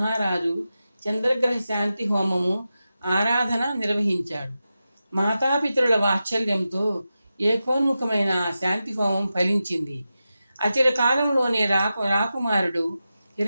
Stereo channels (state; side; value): inverted; both; correlation -0.92